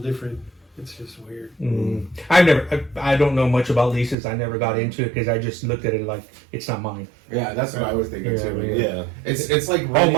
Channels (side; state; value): left; drops out; at 4.2 s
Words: It's just weird. I don't know much about leases. I never got into it because I just looked at it like it's not mine. Yeah, that's what I was thinking too. yeah. It's like All